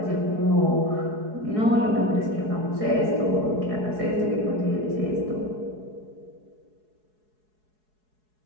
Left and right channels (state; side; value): late; left; 4.7 ms